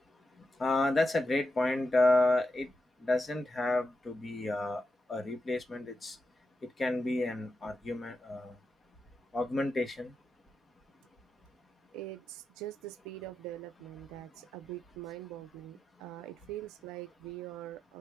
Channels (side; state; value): both; normal; correlation 0.88